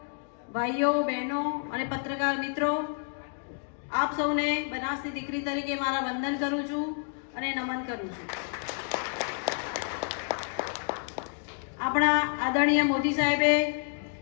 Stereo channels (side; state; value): right; silent; 58 dB below the other